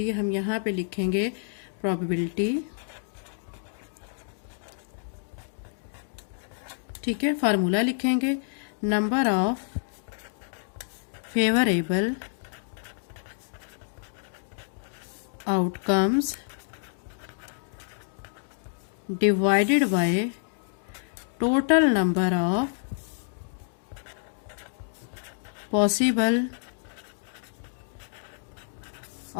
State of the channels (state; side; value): silent; right; digital silence